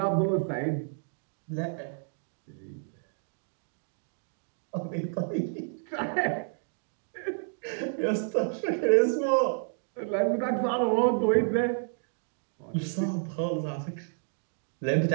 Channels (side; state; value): left; silent; 58 dB below the other